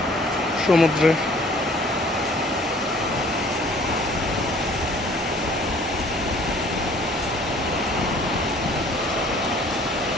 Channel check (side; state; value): both; normal; correlation 0.55